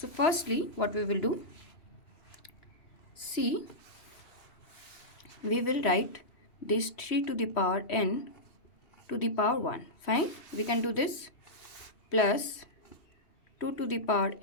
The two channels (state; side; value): late; right; 3.1 ms